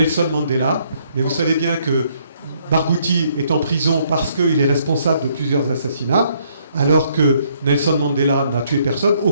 Mandela. Mais vous savez bien que Barghouti est en prison parce qu'il est responsable de plusieurs assassinats, alors que Nelson Mandela n'a tué personne. Au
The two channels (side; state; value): both; inverted; correlation -0.68